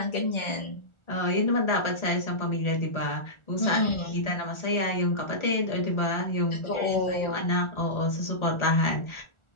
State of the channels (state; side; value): late; right; 1.4 ms